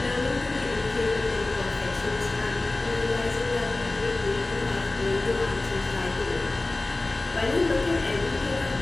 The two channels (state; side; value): quieter; right; 3.1 dB